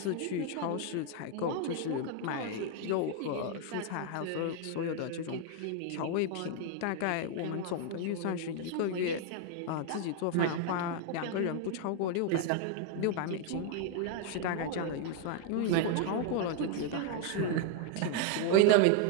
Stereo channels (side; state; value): both; different; correlation 0.01